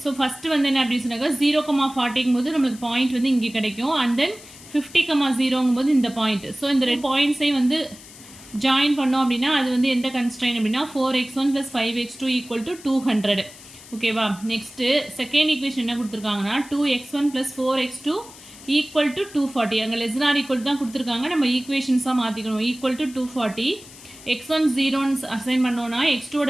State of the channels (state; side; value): noise; left; hiss, 19 dB below the sound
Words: ஸோ ஃபஸ்ட்டு என்ன அப்படின்னு சொன்னாக்கா 0,40ங்கும் போது நம்மளுக்கு பாயிண்ட் இங்கே கிடைக்கும். அண்ட் தென் 50,0ங்கும் போது இந்த பாயிண்ட். ஸோ இந்த ரெண்டு பாயிண்ட்ஸையும் ஜாயின் பண்ணோம் அப்படின்னா அது எந்த கன்ஸ்ட்ரெயின் அப்படின்னா 4x1 plus 5x2 equal to 200. ஓகேவா. நெக்ஸ்ட்டு செகண்ட் ஈக்குவேஷன் என்ன கொடுத்துருக்காங்கன்னா 2x1 plus 4x2 equal to 240. அங்கே லெஸ் than or equal தான் கொடுத்துருக்காங்க, நம்ம ஈக்குவேஷன்ஸாக மாற்றிக்கணும். equal to 240. x1 0ன்னு அசைன் பண்ணோன்னா